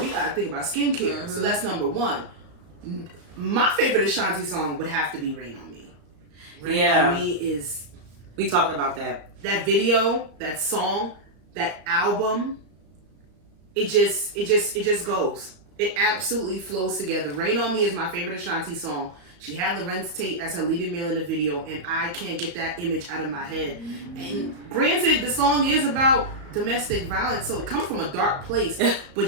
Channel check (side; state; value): left; late; 35 ms